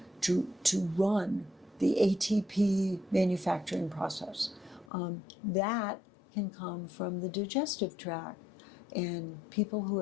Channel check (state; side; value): drops out; right; at 4.9 s